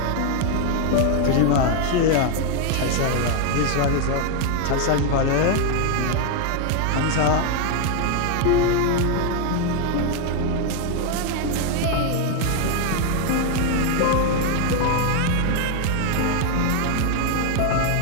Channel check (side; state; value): both; different; correlation 0.01